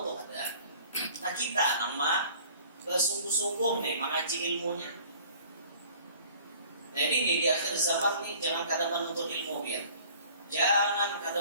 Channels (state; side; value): inverted; both; correlation -0.50